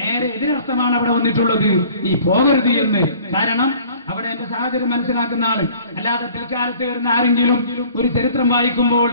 എതിരർത്ഥമാണ് അവിടെ വന്നിട്ടുള്ളത്, നീ പോകരുത് എന്ന്. കാരണം അവിടെ എന്റെ സാഹചര്യം മനസ്സിലാക്കുന്ന ആള്, അല്ലാതെ പിൽക്കാലത്ത് വരുന്ന ആരെങ്കിലും ഒരു ചരിത്രം വായിക്കുമ്പോൾ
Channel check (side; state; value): both; inverted; correlation -0.51